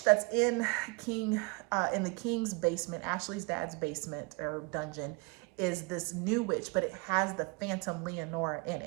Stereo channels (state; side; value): quieter; left; 28.5 dB